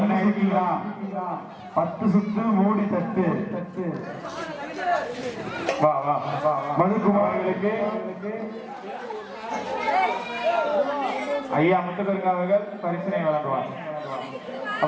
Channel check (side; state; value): both; identical; correlation 1.00